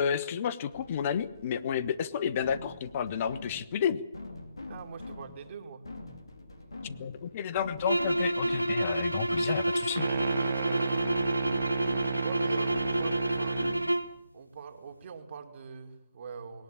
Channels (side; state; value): both; inverted; correlation -0.78